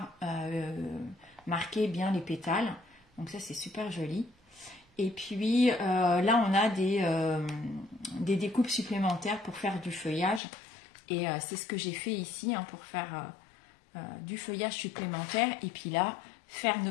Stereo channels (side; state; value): right; drops out; at 10.4 s